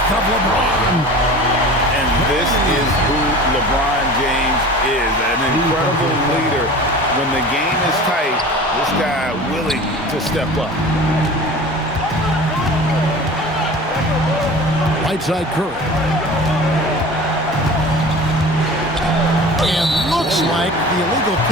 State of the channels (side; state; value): both; normal; correlation 0.38